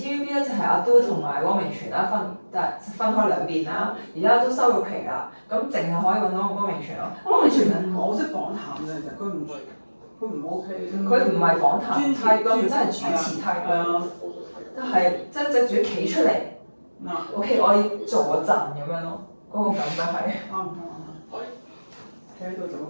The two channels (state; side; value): inverted; both; correlation -1.00